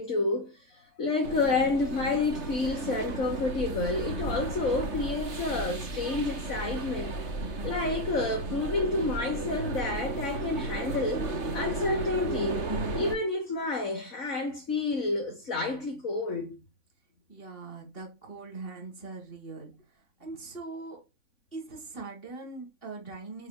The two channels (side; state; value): right; late; 3.5 ms